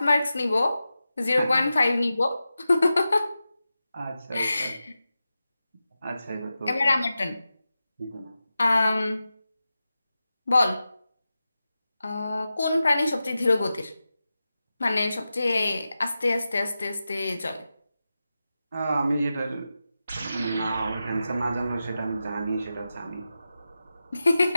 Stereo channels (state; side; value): inverted; both; correlation -0.92